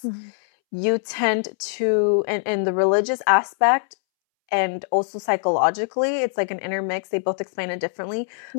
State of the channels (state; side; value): silent; right; 64 dB below the other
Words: you tend to, in the religious aspect and also psychologically, it's like an intermix. They both explain it differently,